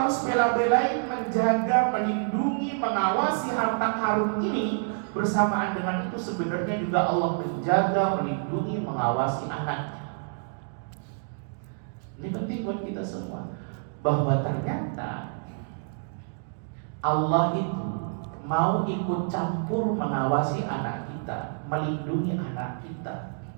bela-belain menjaga, melindungi, mengawasi harta karun ini, bersamaan dengan itu sebenarnya juga Allah menjaga, melindungi, mengawasi anaknya. Ini penting buat kita semua, bahwa ternyata Allah itu mau ikut campur mengawasi anak kita, melindungi anak kita,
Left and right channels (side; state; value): left; silent; digital silence